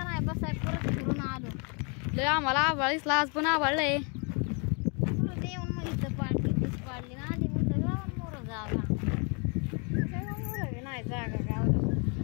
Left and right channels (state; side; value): quieter; right; 35.2 dB